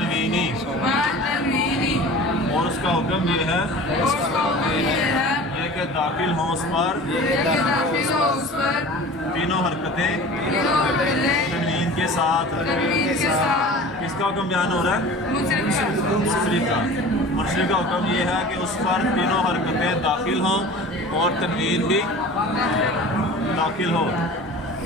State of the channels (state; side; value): normal; both; correlation 0.40